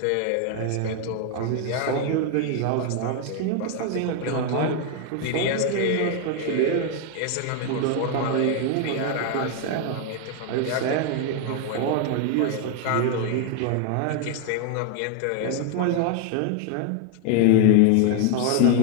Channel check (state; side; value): different; both; correlation 0.01